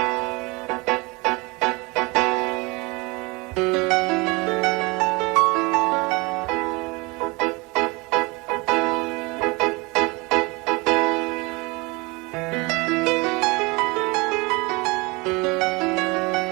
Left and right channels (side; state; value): left; quieter; 26.2 dB